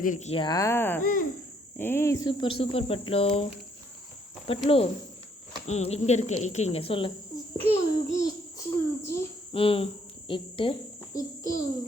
ஏய் சூப்பர் பட்லு. இங்க இருக்கு சொல்லு. இட்டு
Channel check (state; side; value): normal; both; correlation 0.67